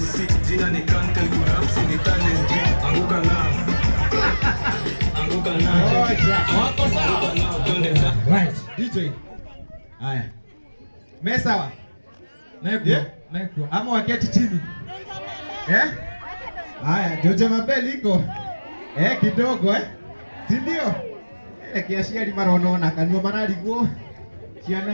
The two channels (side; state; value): both; inverted; correlation -1.00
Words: jina ni Kante Kurapsi ni talent. Anguka nao wako sawa nao twende right DJ. Haya, mesawa Meko ama waketi chini haya, Jojo Mabel iko kidogo si ndio? Kiashiari maronona kanua manaliguo